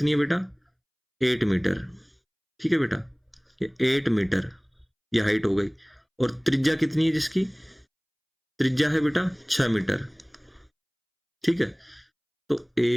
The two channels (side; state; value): both; identical; correlation 1.00